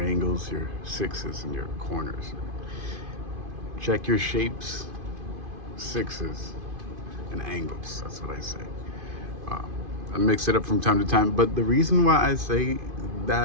your sixes, and your corners. Check your shapes, sixes, and angles. That's what I say. I mix it up from time to time, but the reason why I say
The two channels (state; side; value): late; left; 2.5 ms